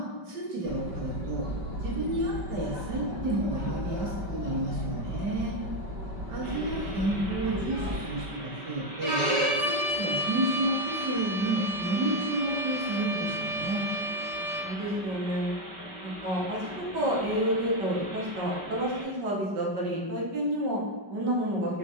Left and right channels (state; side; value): late; left; 5.2 ms